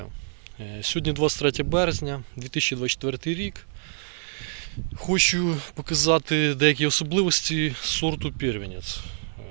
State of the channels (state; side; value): silent; left; 61 dB below the other